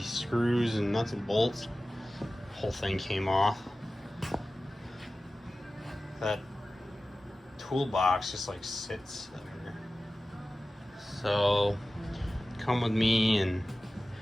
screws and nuts and bolts. Whole thing came off. That toolbox just like sits there. So come with me and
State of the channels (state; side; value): normal; both; correlation 0.95